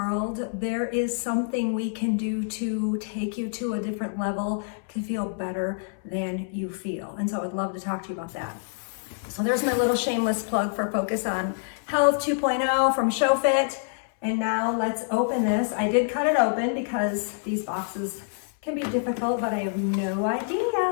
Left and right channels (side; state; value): right; silent; 59 dB below the other